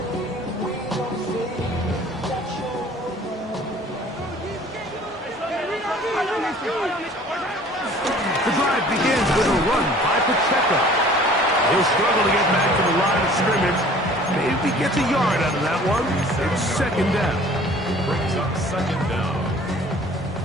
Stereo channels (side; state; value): both; normal; correlation 0.50